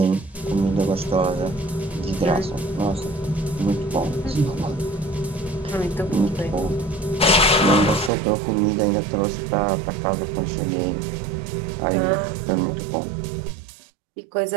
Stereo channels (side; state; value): left; drops out; at 8.1 s